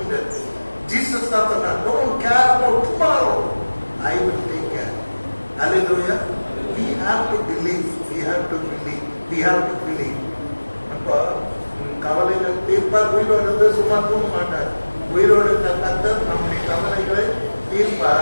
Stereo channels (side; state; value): both; inverted; correlation -1.00